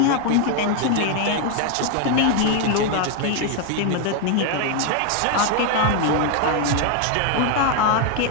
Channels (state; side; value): different; both; correlation 0.01